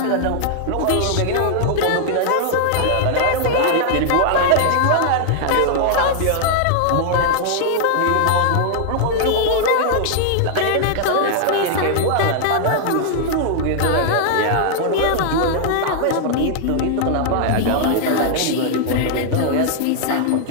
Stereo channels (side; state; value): both; different; correlation -0.01